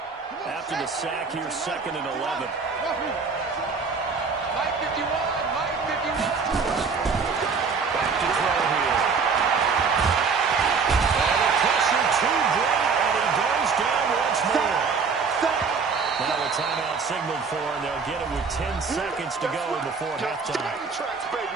After the sack, here's 2nd and 11. Mike 51. Back to throw here. And a pressure to Brady. seconds to go before halftime. Train tracks,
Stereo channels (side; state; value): left; quieter; 5.2 dB